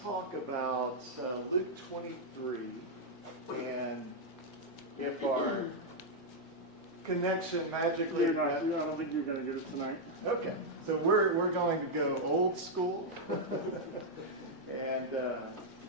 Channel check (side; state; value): both; normal; correlation -0.03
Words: about Luke 23, and if our connection magically... I don't think you're going to get it tonight. Okay, so we're going to go old school, and